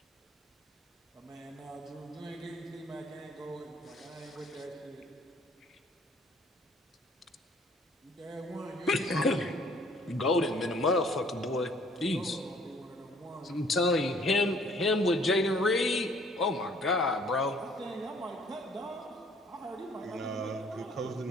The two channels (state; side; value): normal; both; correlation 0.59